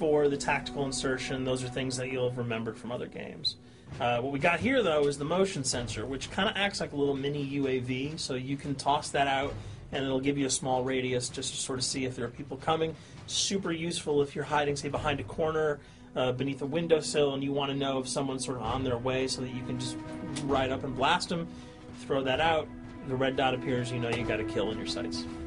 the tactical insertion, those are things that you'll have remembered from other games. What we got here, though, is the motion sensor, which kind of acts like a little mini UAV, so you can toss that out, and it'll give you a small radius just to sort of see if there are people coming. Super useful if you're hiding, say, behind a corner, beneath a windowsill, and you want to know if someone's sort of on their way so that you can just ride up and blast them. Throw that out, the red dot appears, you know you got a kill in your sights.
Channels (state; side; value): identical; both; correlation 1.00